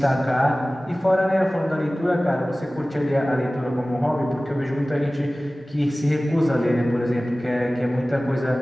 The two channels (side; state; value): both; normal; correlation 0.97